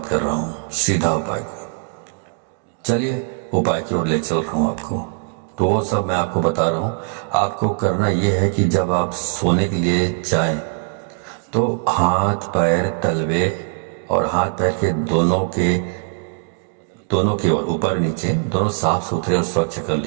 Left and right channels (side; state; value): left; quieter; 39.3 dB